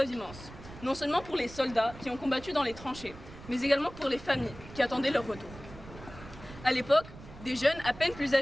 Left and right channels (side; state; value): right; noise; rumble, 16 dB below the sound